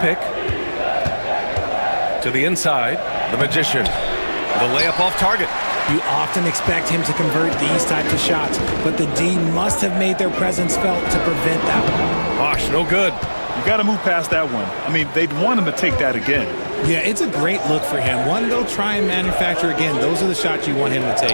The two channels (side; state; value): both; inverted; correlation -1.00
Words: To the inside, the Magician. The layup off target. You often expect him to convert these types of shots, but the D must have made their presence felt to prevent that one. Bosh, no good. You got to move past that one. I mean, they'd want him to take that again. Yeah, it's a great look for him. One they'll try and manufacture again. Those are the shots you want him to